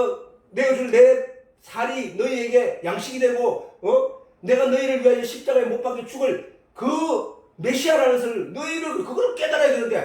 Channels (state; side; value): identical; both; correlation 1.00